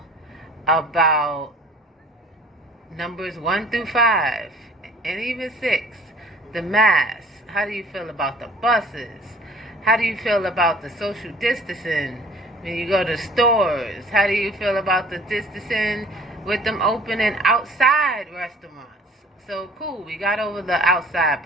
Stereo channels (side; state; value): both; normal; correlation 0.50